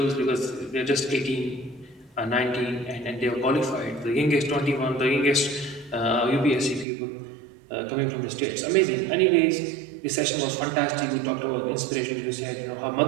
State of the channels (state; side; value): drops out; left; at 6.9 s